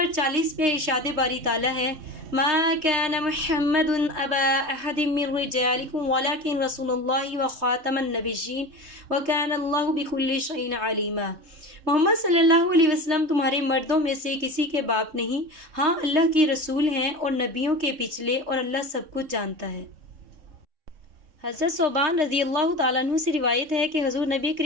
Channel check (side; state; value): left; late; 3.3 ms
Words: 40 میں ارشاد باری تعالیٰ ہے، ما كان محمد ابا احد من رجالكم ولكن رسول الله وخاتم النبيين وكان الله بكل شيء عليما۔ محمد صلی اللہ علیہ وسلم تمہارے مردوں میں سے کسی کے باپ نہیں، ہاں اللہ کے رسول ہیں اور نبیوں کے پچھلے، اور اللہ سب کچھ جانتا ہے۔ حضرت ثوبان رضی اللہ تعالیٰ عنہ سے روایت ہے کہ حضور نبی